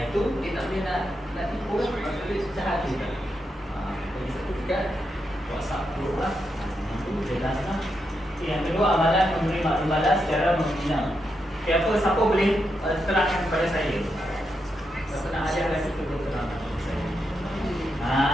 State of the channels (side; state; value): both; normal; correlation 0.84